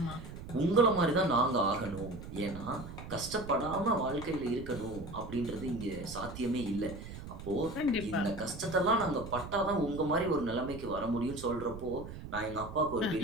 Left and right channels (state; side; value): noise; right; rumble, 11 dB below the sound